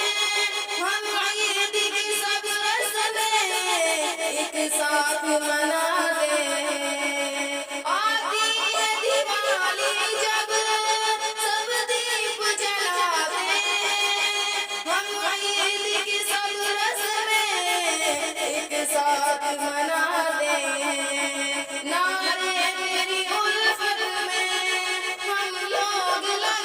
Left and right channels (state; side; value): identical; both; correlation 1.00